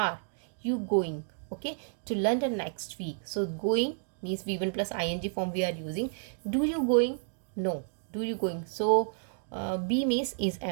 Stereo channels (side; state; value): left; silent; digital silence